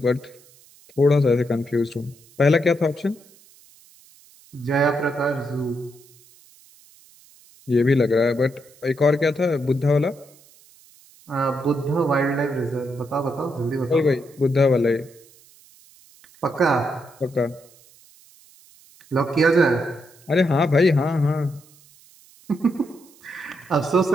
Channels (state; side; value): noise; right; hiss, 27 dB below the sound